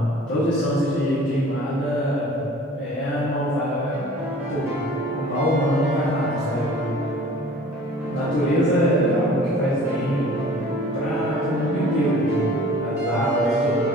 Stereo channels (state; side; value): normal; both; correlation 0.47